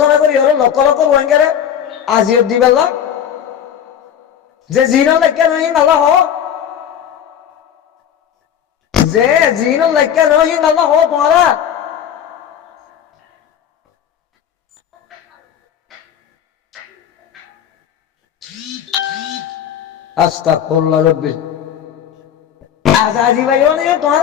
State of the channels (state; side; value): quieter; right; 9.2 dB